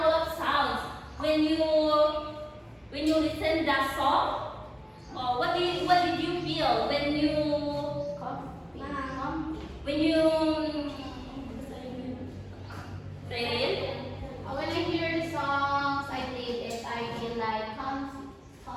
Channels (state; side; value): identical; both; correlation 1.00